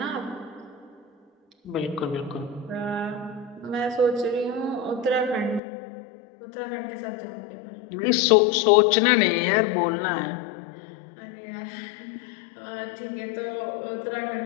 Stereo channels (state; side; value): drops out; right; at 5.6 s